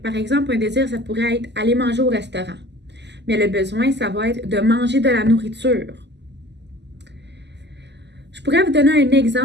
exemple, un désir, ça pourrait être aller manger au restaurant. Mais le besoin, ça va être de manger de la nourriture. Je pourrais vous donner un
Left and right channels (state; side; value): late; left; 0.50 ms